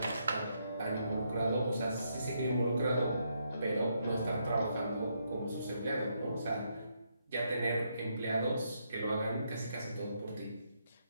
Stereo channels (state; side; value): inverted; both; correlation -0.77